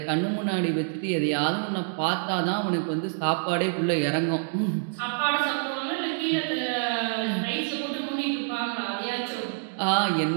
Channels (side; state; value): left; silent; digital silence